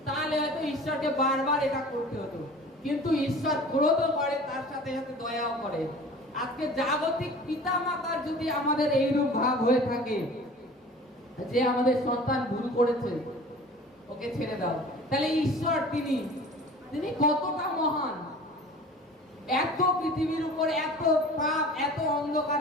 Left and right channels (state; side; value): normal; both; correlation 0.42